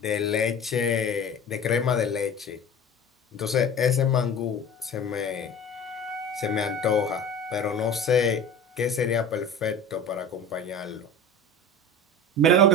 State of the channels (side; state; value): both; normal; correlation 0.35